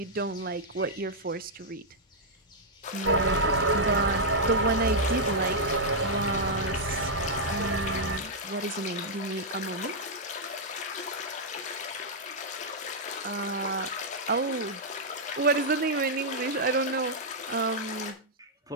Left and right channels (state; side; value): normal; both; correlation -0.06